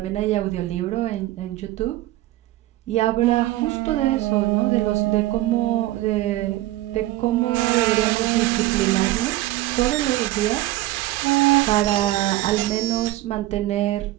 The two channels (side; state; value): left; quieter; 16.4 dB